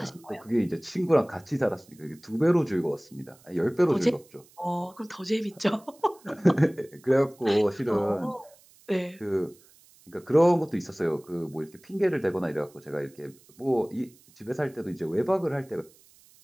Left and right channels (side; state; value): right; noise; hiss, 28 dB below the sound